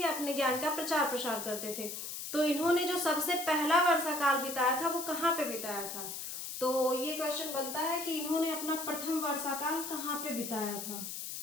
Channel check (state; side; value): noise; left; hiss, 7 dB below the sound